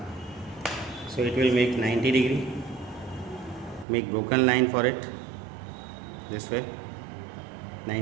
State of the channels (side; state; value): left; drops out; at 3.9 s